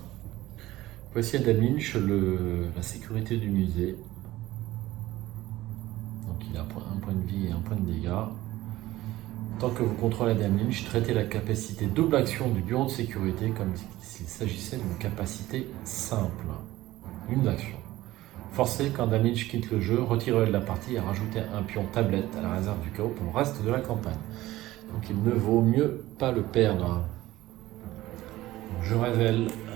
Voici Adam Lynch, la sécurité du musée. Donc il a un point de vie et un point de dégâts. Tant que vous contrôlez Adam Lynch, traitez la capacité double action du bureau de sécurité comme s'il s'agissait d'une capacité simple. Une action. Forcez quand Adam Lynch quitte le jeu, retirez-le de la partie et rajoutez un pion tablette à la réserve du chaos pour le reste de la campagne. Donc il ne vaut mieux pas le perdre. Je révèle.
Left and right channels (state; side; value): quieter; left; 16.5 dB